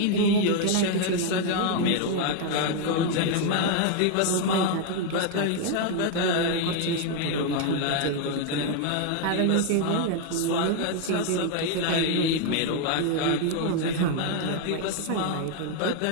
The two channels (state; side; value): different; both; correlation 0.01